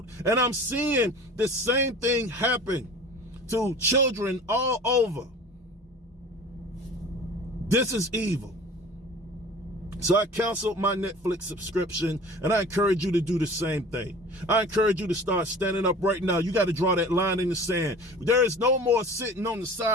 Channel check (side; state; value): both; normal; correlation 0.41